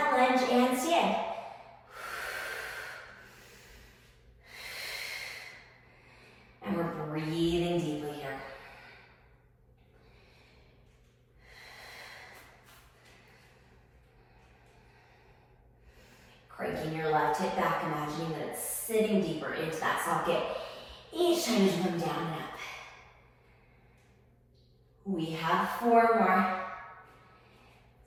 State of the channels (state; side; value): identical; both; correlation 1.00